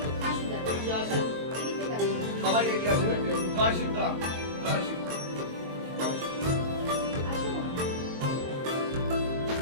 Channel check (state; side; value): late; left; 22 ms